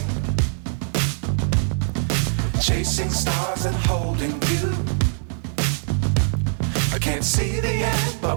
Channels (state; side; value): silent; left; 64 dB below the other